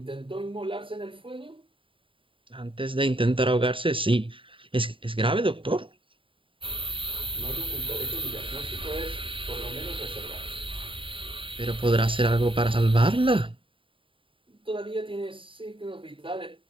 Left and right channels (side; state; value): left; late; 0.25 ms